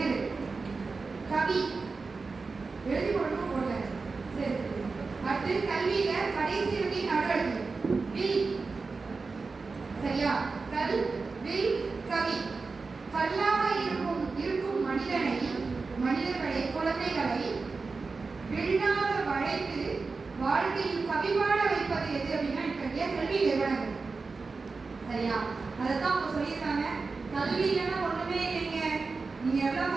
கவி எழுதி போடணும் போடல. சரி, அடுத்து கல்வியில கடைசி எழுதி நடு எழுதி வில். சரியா? கல் வில் கவி. கல்லாக இருக்கும் மனிதர்களை குழந்தைகளை விழாத வளைத்து வாழ்க்கையில் கவிவாழ வைப்பது எது அப்படின்னா இத்தகைய கல்வி நிறுவனங்கள். சரியா? அதைத்தான் அவங்க சொல்லியிருக்காங்க. கல்வி இல்லைன்னா ஒண்ணுமே இல்லைங்க. நீங்க எவ்வளவு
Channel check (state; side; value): quieter; left; 4.2 dB